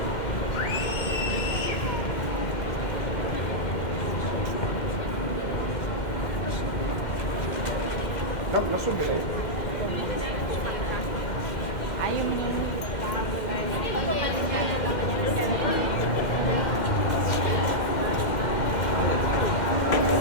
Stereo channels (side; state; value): right; late; 2.1 ms